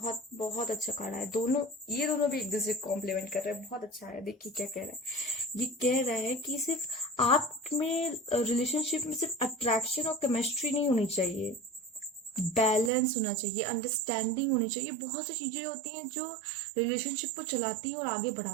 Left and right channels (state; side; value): drops out; left; at 12.9 s